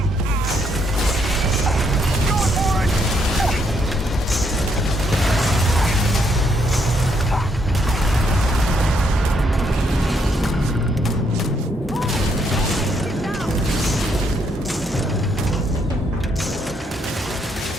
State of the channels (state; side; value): normal; both; correlation 0.74